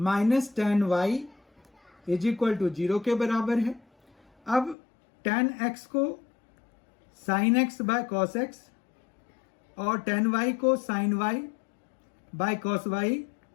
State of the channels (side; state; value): right; drops out; at 4.8 s